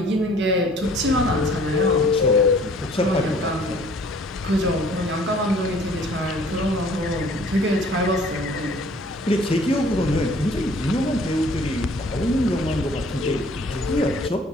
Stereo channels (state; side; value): normal; both; correlation 0.54